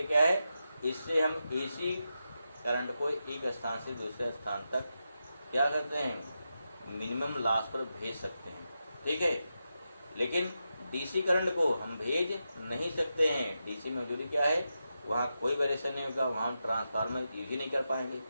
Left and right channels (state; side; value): inverted; both; correlation -0.88